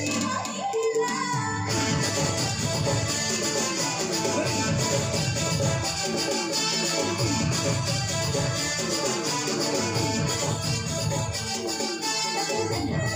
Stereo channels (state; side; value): identical; both; correlation 1.00